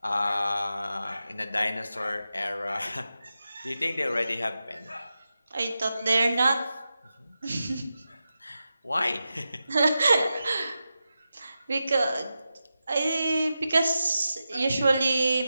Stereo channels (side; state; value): both; inverted; correlation -0.91